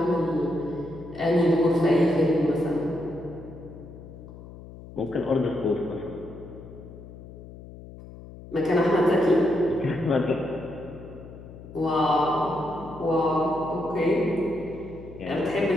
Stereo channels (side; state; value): left; noise; hum, 16 dB below the sound